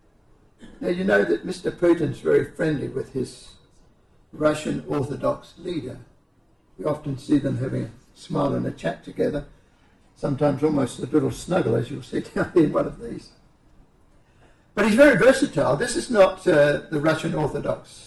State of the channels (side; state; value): both; identical; correlation 1.00